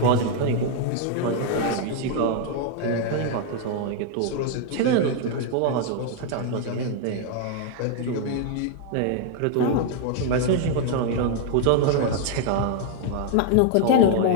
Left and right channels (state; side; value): different; both; correlation 0.00